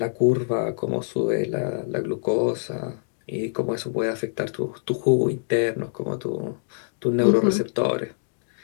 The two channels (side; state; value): right; silent; digital silence